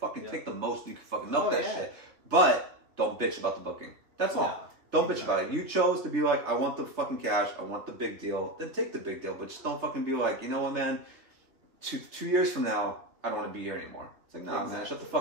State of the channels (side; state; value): left; late; 2.8 ms